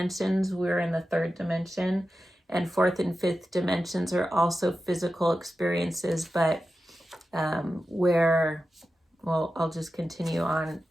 we're in the third dimension, and fourth and fifth dimensions are also physical experiences, but I'll just continue on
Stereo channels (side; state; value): both; normal; correlation 0.92